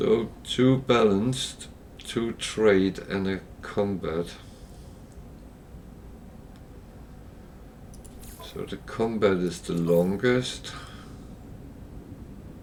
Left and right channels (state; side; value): identical; both; correlation 1.00